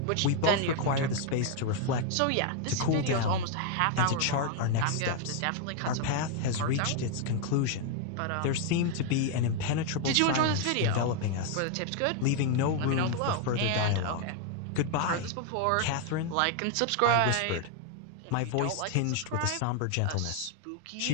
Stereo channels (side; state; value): both; different; correlation 0.00